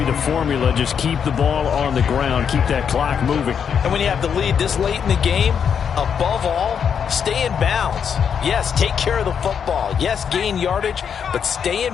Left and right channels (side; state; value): right; quieter; 7.4 dB